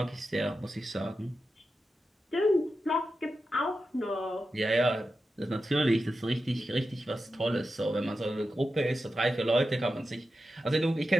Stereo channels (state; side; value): normal; both; correlation 0.90